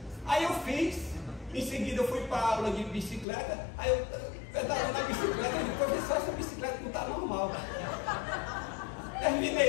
Aí eu fiz, em seguida eu fui para a aula de bicicleta. Aí eu pedalando a bicicleta, e professor, essa bicicleta não está normal.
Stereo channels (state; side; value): drops out; right; at 3.2 s